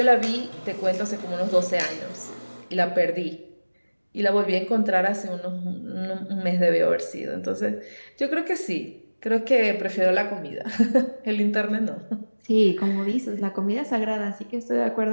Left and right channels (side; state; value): both; inverted; correlation -1.00